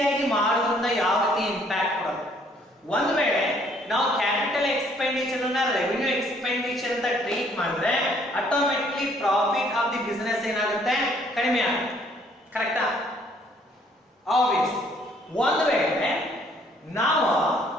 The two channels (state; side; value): normal; both; correlation 0.63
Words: ಮಾಡೋದ್ರಿಂದ ಯಾವ ರೀತಿ ಇಂಪ್ಯಾಕ್ಟ್ ಬರುತ್ತೆ? ಒಂದು ವೇಳೆ ನಾವು ಕ್ಯಾಪಿಟಲ್ ಎಕ್ಸ್ಪೆಂಡಿಚರ್ ಅನ್ನ ರೆವಿನ್ಯೂ ಎಕ್ಸ್ಪೆಂಡಿಚರ್ ಅಂತ ಟ್ರೀಟ್ ಮಾಡಿದ್ರೆ automatically profit of the business ಏನಾಗುತ್ತೆ, ಕಡಿಮೆ ಆಗುತ್ತೆ. ಕರೆಕ್ಟಾ? ಆಬ್ವಿಯಸ್. ಒಂದು ವೇಳೆ ನಾವು